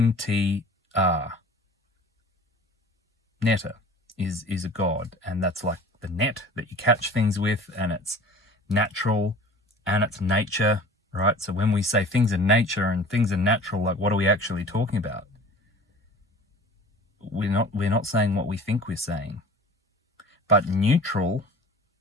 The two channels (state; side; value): normal; both; correlation 0.43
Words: netta, is a god, and that's like the net that you catch things with, and it's natural and it's nature, right? So when we say things are nature and things are natural, like, what are we actually talking about? We're not saying what we think we're saying. But neutral,